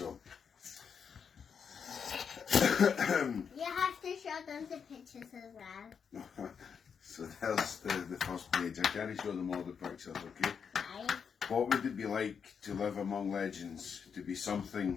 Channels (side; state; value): right; quieter; 6.7 dB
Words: You have to show them the pictures as well. So there's the first page. I can't show them all the pictures, okay? Right. What would it be like to live among legends, to be